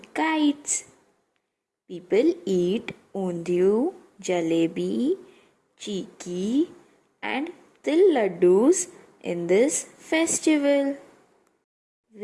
kites. People eat undiyu, jalebi, chiki and til laddus in this festival.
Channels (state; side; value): identical; both; correlation 1.00